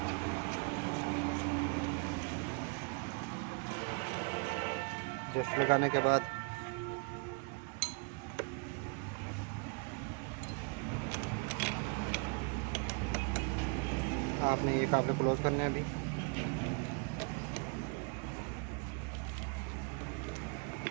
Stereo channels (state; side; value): quieter; left; 35.7 dB